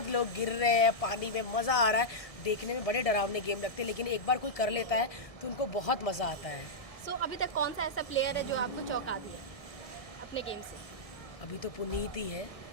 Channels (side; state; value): right; late; 1.7 ms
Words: लोग गिर रहे हैं पानी में, मज़ा आ रहा है देखने में। बड़े डरावने गेम लगते हैं, लेकिन एक बार कोई कर लेता है तो उनको बहुत मज़ा आता है। सो अभी तक कौन सा ऐसा प्लेयर है जो आपको चौंका दिया अपने गेम से? अभी तो पुनीत ही है,